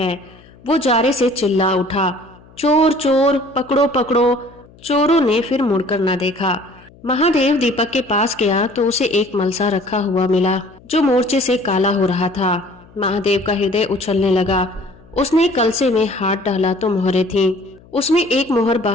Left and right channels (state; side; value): noise; left; hum, 25 dB below the sound